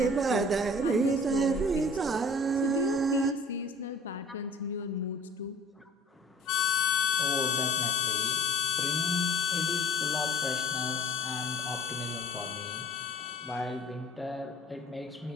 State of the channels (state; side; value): normal; both; correlation 0.50